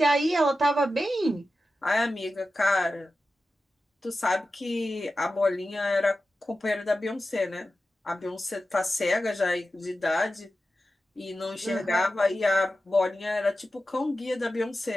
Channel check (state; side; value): normal; both; correlation 0.93